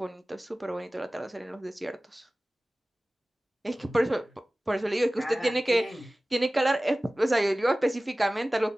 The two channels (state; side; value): normal; both; correlation 0.97